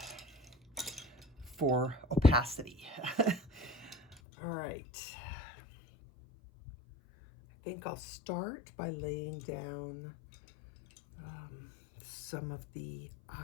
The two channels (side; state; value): right; drops out; at 4.2 s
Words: for opacity. All right. I think I'll start by laying down some of the